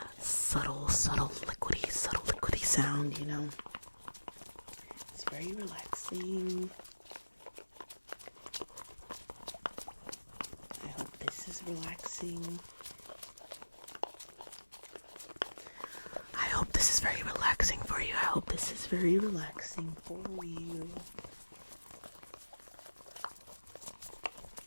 subtle liquidy sound, you know. It's very relaxing. I hope this is relaxing. I hope this is very relaxing for you. I hope this is very relaxing for you.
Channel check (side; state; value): both; inverted; correlation -1.00